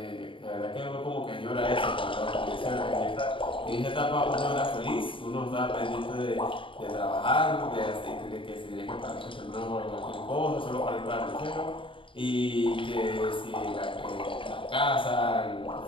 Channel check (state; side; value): late; right; 0.25 ms